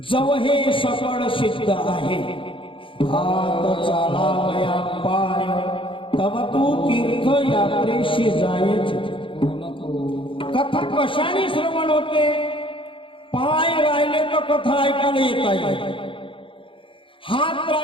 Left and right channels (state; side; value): late; right; 0.25 ms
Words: हे सकळ सिद्ध आहे, हात चालावया पाय, तव तू तीर्थ यात्रेशी जायचे. कथा कशाने श्रवण होते? पाय राहिले तर कथा ऐकायला येता येईल, हात